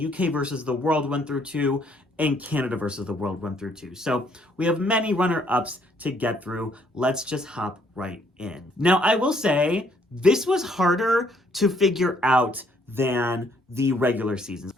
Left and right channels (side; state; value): both; normal; correlation 0.67